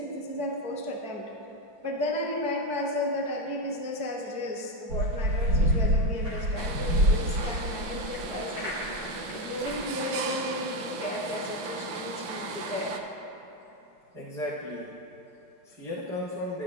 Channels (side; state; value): left; late; 6.0 ms